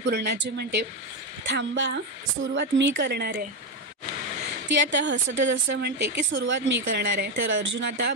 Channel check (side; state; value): both; normal; correlation 0.09